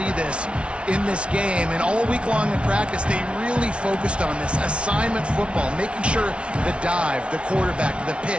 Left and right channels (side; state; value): left; late; 0.059 ms